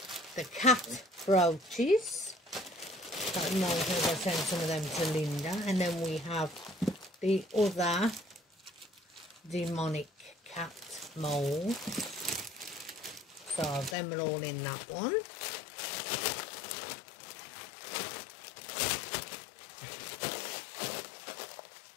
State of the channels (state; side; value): drops out; right; at 14.0 s